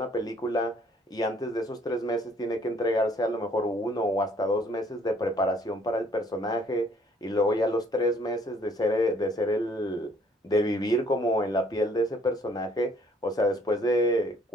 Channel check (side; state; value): both; normal; correlation 0.62